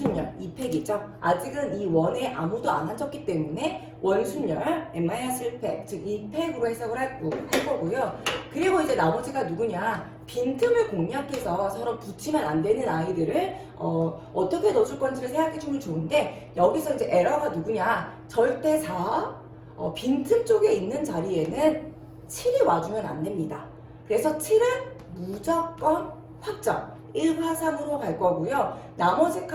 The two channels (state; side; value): identical; both; correlation 1.00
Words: 2팩이죠. 아직은 이 원에 아무도 안 앉았기 때문에 원순열 n-1팩, 즉 2팩으로 해석을 할 거고요. 그리고 이제 나머지가 누구냐? 빈틈을 공략해서 서로 붙이면 안 되는 아이들을 어떻게 넣어줄 건지를 생각해 주면 좋은데, 여기서 이제 에러가 누구냐? 절대 4, 빈틈 쪽에 있는 자리에는 7이 와주면 안 됩니다. 그래서 7은 무조건 확정. 1과 3으로 갈 거고요. 나머지